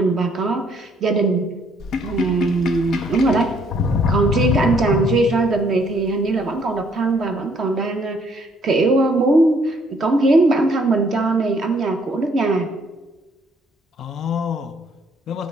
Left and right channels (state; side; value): normal; both; correlation 0.66